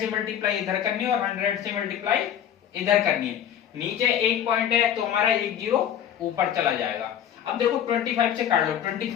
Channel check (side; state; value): right; quieter; 9.8 dB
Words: मल्टीप्लाई इधर करनी है और 100 से मल्टीप्लाई इधर करनी है। नीचे एक पॉइंट है तो हमारा एक जीरो ऊपर चला जाएगा। अब देखो 25 से काट लो।